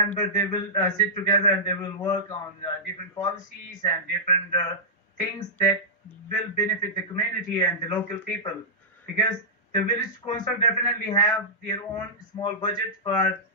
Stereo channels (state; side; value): normal; both; correlation -0.13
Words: they will sit together and they will work on different policies and different things that will benefit the community and the local people, because the village council definitely have their own small budget for